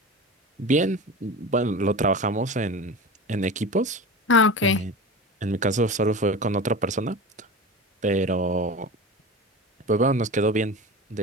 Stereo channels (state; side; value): normal; both; correlation 0.31